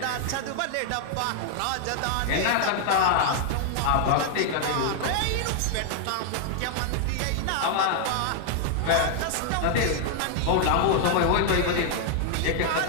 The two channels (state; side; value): different; both; correlation 0.00